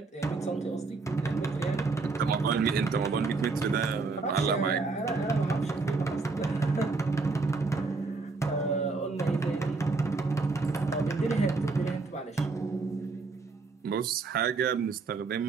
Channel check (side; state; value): left; quieter; 4.0 dB